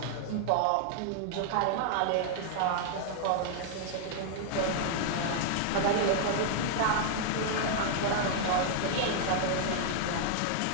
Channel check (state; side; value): different; both; correlation -0.01